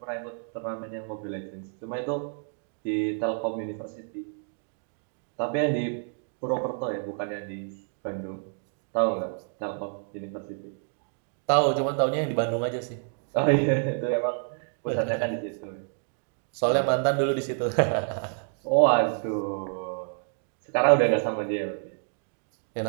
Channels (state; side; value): silent; left; 59 dB below the other